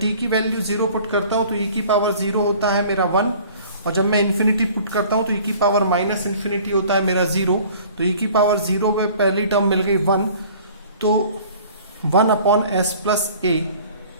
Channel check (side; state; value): both; inverted; correlation -0.49